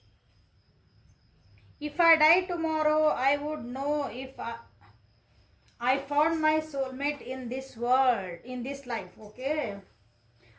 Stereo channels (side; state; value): both; identical; correlation 1.00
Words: If I dye tomorrow I would no if I found my soulmate in this world in this life. Okay,